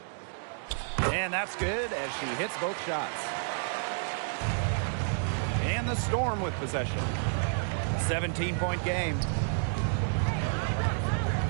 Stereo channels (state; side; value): silent; left; digital silence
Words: And that's good as she hits both shots. And the Storm with possession. 17-point game.